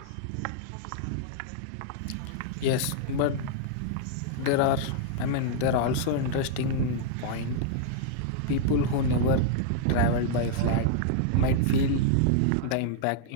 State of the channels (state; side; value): different; both; correlation -0.01